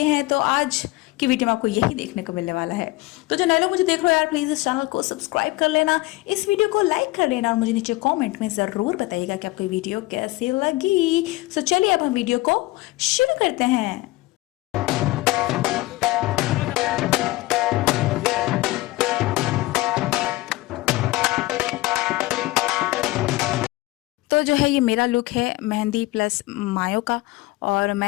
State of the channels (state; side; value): quieter; right; 19.5 dB